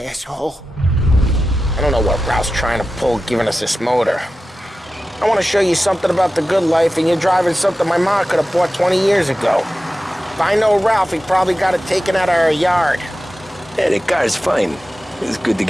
I don't know what Ralph's trying to pull giving us this motor. I want to show you something about the good life, and you're driving something my mom could have bought 20 years ago. If I know Ralph, he probably got it taken out of our yard. Yeah, the car's fine. It's good to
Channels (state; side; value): normal; both; correlation 0.93